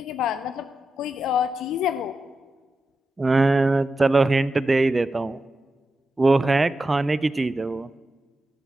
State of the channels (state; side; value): normal; both; correlation 0.90